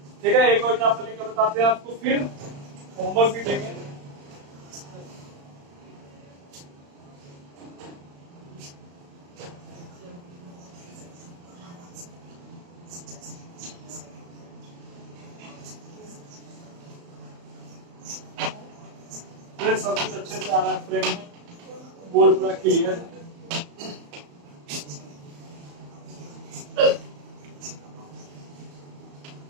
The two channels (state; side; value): late; left; 35 ms